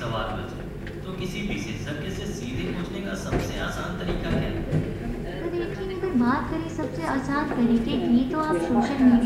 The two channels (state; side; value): identical; both; correlation 1.00